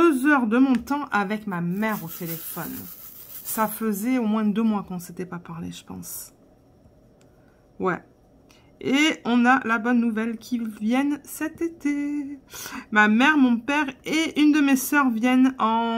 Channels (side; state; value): both; identical; correlation 1.00